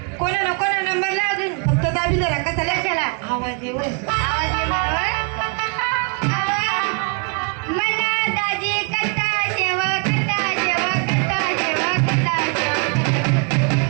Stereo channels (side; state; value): left; quieter; 35.9 dB